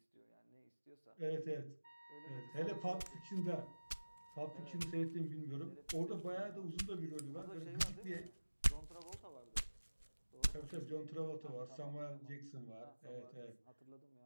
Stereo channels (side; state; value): both; inverted; correlation -1.00